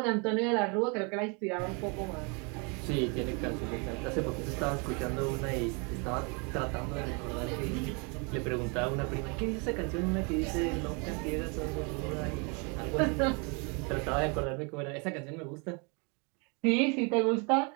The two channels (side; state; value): left; quieter; 33.1 dB